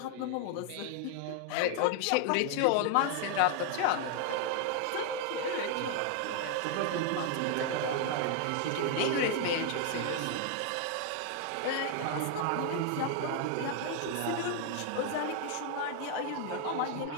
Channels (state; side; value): different; both; correlation 0.00